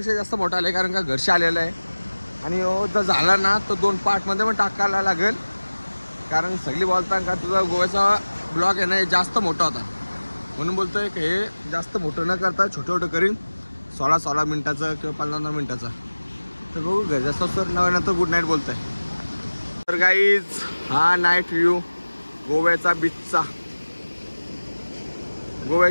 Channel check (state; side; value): inverted; both; correlation -1.00